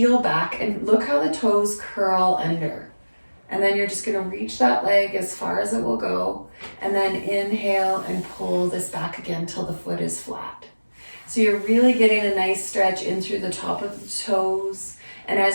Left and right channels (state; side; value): inverted; both; correlation -1.00